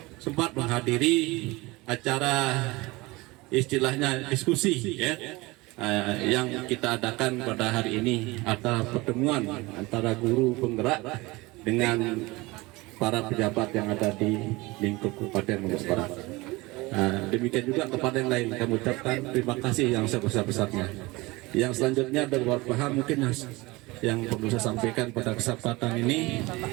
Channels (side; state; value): left; quieter; 22.5 dB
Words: sempat menghadiri acara istilahnya diskusi ya, yang kita adakan pada hari ini, atau pertemuan antara guru penggerak dengan para pejabat yang ada di lingkup Kabupaten Lombok Barat. Demikian juga kepada yang lain kami ucapkan terima kasih yang sebesar-besarnya. Yang selanjutnya ada beberapa hal mungkin yang perlu saya sampaikan pada kesempatan ini